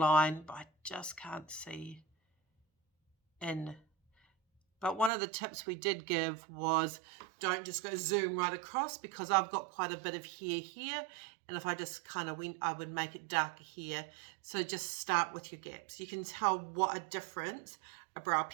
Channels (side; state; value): left; drops out; at 5.1 s